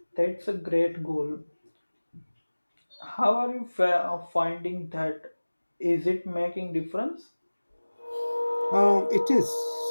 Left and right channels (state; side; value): inverted; both; correlation -1.00